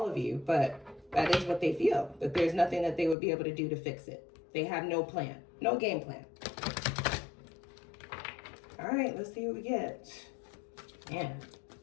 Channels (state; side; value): drops out; right; at 3.2 s